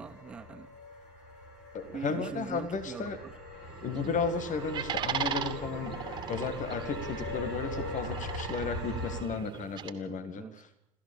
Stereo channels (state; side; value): normal; both; correlation 0.18